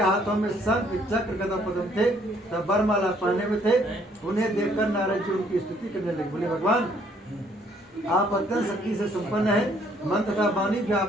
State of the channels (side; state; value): both; normal; correlation 0.65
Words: में शंख चक्र गदा पद्म थे, तब वरमाला पहने में थे। उन्हें देखकर नारद जी उनकी स्तुति करने लगे। बोले, भगवान आप अत्यंत शक्ति से संपन्न है, मन तथा वाणी भी